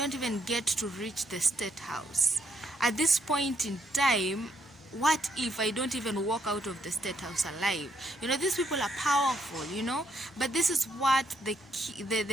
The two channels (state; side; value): normal; both; correlation 0.74